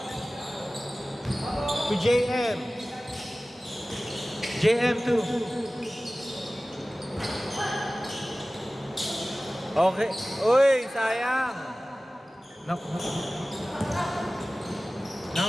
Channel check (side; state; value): both; normal; correlation 0.97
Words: To JM. JM2. Okay. Uy, sayang.